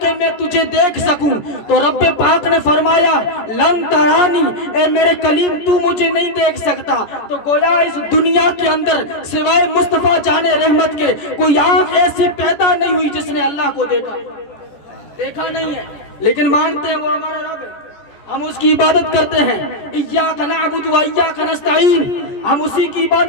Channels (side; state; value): right; late; 14 ms